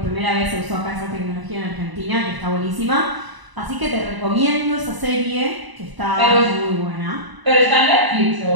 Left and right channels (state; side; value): late; left; 1.0 ms